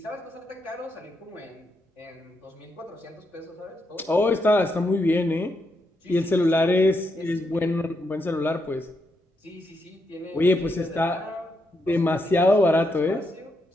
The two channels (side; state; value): both; normal; correlation 0.81